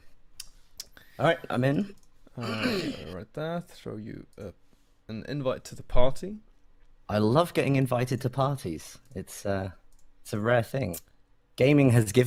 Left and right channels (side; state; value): both; identical; correlation 1.00